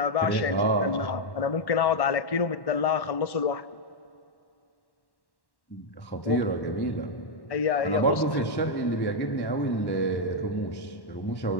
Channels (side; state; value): right; late; 1.1 ms